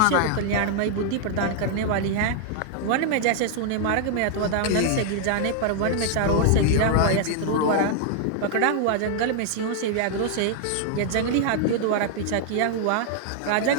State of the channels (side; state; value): both; different; correlation 0.00